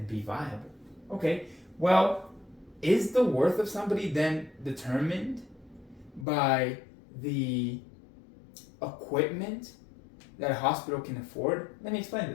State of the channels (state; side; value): drops out; right; at 6.2 s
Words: be viable. Okay, well, is the worth of somebody then determined by the equipment that a hospital can afford? Let me explain